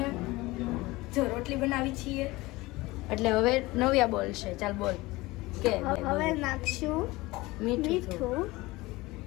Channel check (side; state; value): right; quieter; 20.8 dB